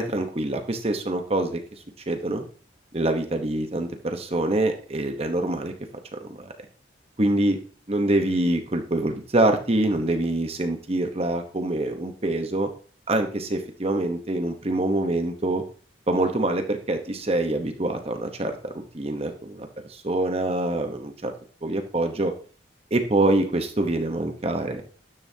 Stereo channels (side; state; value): both; normal; correlation 0.59